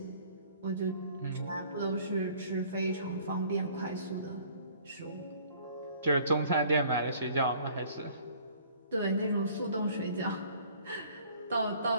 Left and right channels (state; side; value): inverted; both; correlation -0.54